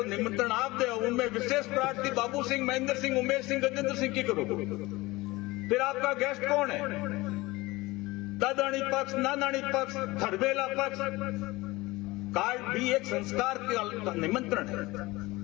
निमंत्रण आप दे, उनमें विशेष प्रार्थी बाबू सिंह, महेंद्र सिंह, उमेश सिंह, गजेंद्र सिंह की करोगे। फिर आपका गेस्ट कौन है? दादानी पक्ष, नानानी पक्ष, खड़बेला पक्ष। कार्ड भी एक संस्कार का निमंत्रण है।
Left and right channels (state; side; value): quieter; right; 21.0 dB